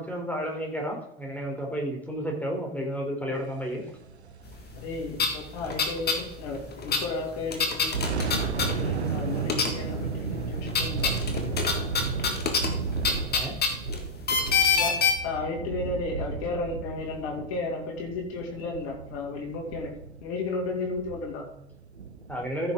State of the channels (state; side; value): normal; both; correlation 0.02